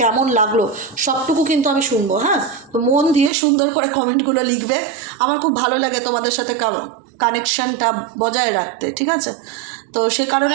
কেমন লাগলো সবটুকু কিন্তু আমি শুনবো। হ্যাঁ, তো মন দিয়ে সুন্দর করে কমেন্টগুলো লিখবে, আমার খুব ভালো লাগে তোমাদের সাথে কানেকশানটা বজায় রাখতে, ঠিক আছে। তো সে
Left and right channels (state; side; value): drops out; left; at 3.3 s